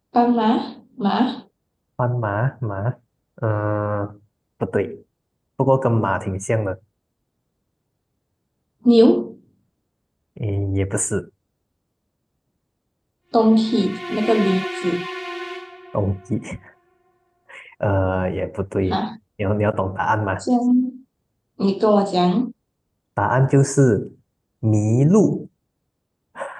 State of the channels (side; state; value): both; identical; correlation 1.00